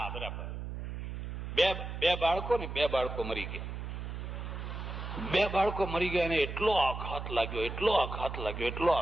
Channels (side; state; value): right; noise; hum, 6 dB below the sound